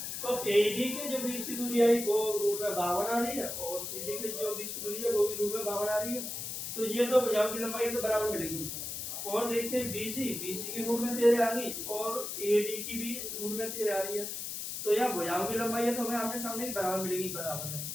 तो ए डी के जो बीच की दूरी आई वो रूट में 52 आ रही है और सी डी के जो बीच की दूरी है वो भी रूट में 52 आ रही है। तो ये दो भुजाओं की लंबाई तो बराबर मिलेगी। और देखते हैं बीसी की रूट में 13 आ गई और ए डी की भी रूट में 13 आ रही है। तो यहाँ भुजाओं की लंबाई है तो हमें आमने सामने की बराबर मिलेगी, बराबर है।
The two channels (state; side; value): noise; left; hiss, 5 dB below the sound